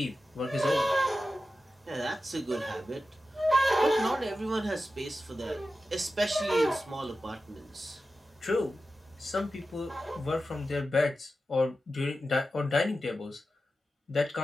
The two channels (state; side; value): normal; both; correlation 0.93